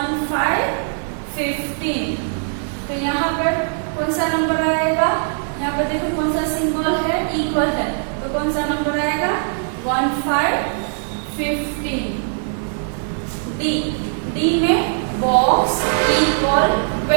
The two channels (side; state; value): left; silent; 55 dB below the other